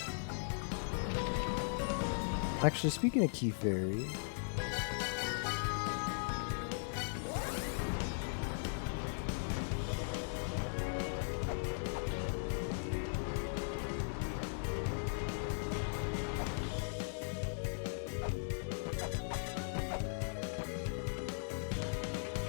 Actually, speaking of Key Fairy,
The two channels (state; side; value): silent; right; digital silence